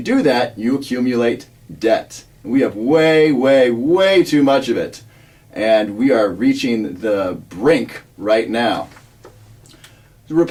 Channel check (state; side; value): identical; both; correlation 1.00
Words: do that, you accumulate debt. We have way, way, way too much of it. And we are reaching the brink right now. The